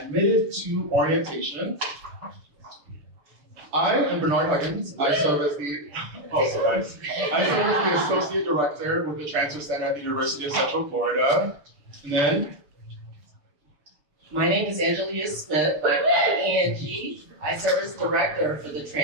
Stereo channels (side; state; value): left; late; 6.8 ms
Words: to orientation. I am Bernard Huggins. I serve as the Associate Director with the Transfer Center at the University of Central Florida. And then, my name is Angelia Smith. I'm Angie. I serve as Director for the